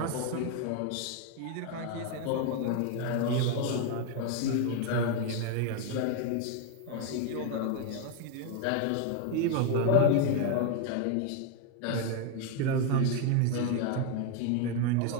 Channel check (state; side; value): different; both; correlation 0.01